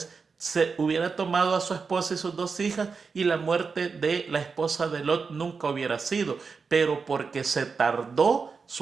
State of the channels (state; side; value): quieter; left; 5.0 dB